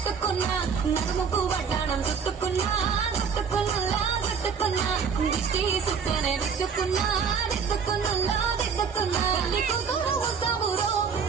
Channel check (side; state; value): left; quieter; 6.2 dB